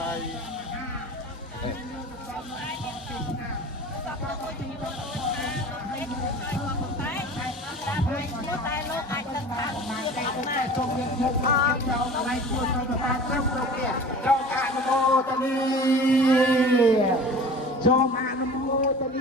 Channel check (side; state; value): both; normal; correlation 0.40